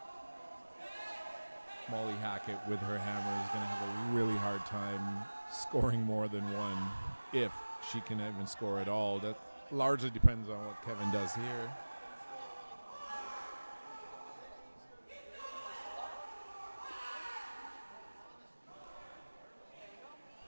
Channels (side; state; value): both; inverted; correlation -1.00